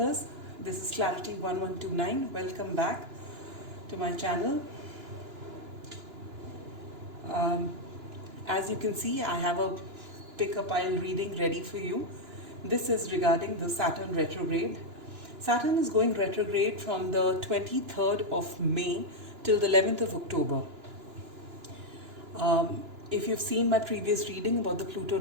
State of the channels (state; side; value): late; left; 2.9 ms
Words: This is Clarity 1129. Welcome back to my channel. Um, as you can see, I have a pick a pile reading ready for you. This is regarding the Saturn retrograde. Saturn is going retrograde from the 23rd of May till the 11th of October. If you've seen my previous reading about the Pluto